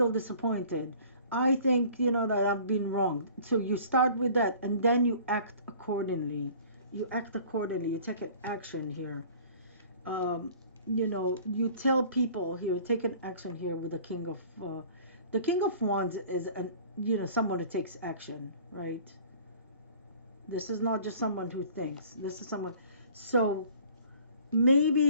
disappointed. I think, that I've been wronged. So you start with that and then you act accordingly. You act accordingly. You take an action here. Um, you tell people here, take an action here with the King of Wands is someone who takes action, right? This is not just someone who thinks. This is someone. So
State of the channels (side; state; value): both; inverted; correlation -0.49